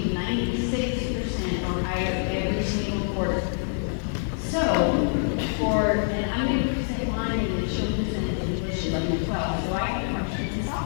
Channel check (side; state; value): right; silent; digital silence